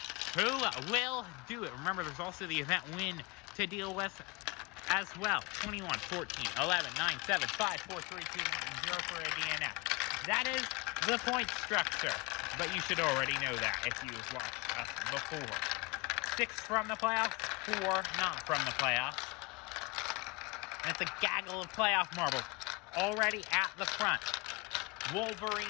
Who will do it? Remember, there's also the event win to deal with as well. 21, 14, 11, 9, 7, 5, 4, 3, 2, 1, 0 for a DNF. That is the point structure, but you should already know that if you've watched us before. 6 from the playoffs, 4 not from the playoffs. And it's a gaggle of playoff marbles already at the front.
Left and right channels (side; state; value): right; quieter; 26.9 dB